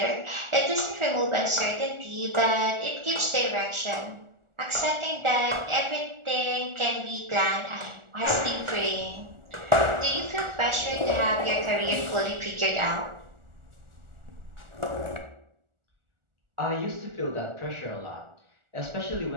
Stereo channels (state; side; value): late; left; 1.4 ms